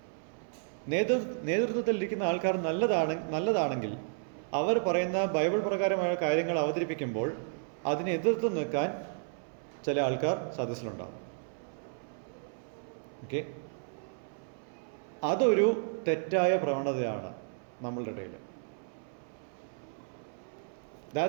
നേതൃത്വത്തിലിരിക്കുന്ന ആൾക്കാർ നല്ലതാണെങ്കിൽ അവർ പറയുന്ന ബൈബിൾ പ്രകാരമായ കാര്യങ്ങൾ അവതരിപ്പിക്കുമ്പോൾ അതിനെ എതിർത്ത് നിൽക്കാൻ ചില ആൾക്കാർ സദസ്സിലുണ്ടാകും. ഓക്കെ, അതൊരു തെറ്റായ പ്രവണതയാണ് നമ്മളുടെ ഇടയിൽ.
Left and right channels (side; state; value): left; silent; 56 dB below the other